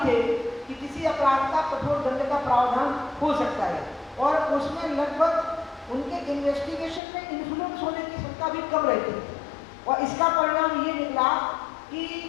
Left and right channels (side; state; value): right; drops out; at 7.0 s